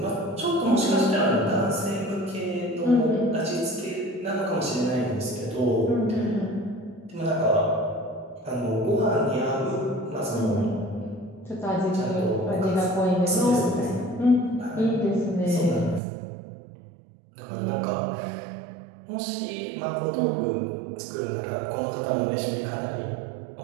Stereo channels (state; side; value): drops out; left; at 16.0 s